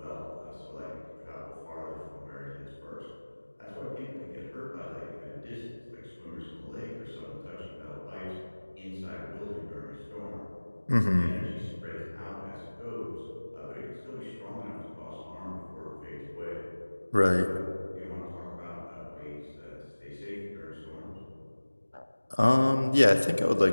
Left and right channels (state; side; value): inverted; both; correlation -1.00